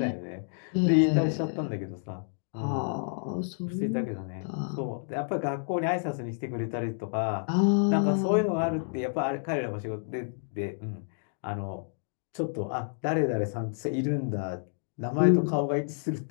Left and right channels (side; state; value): right; silent; digital silence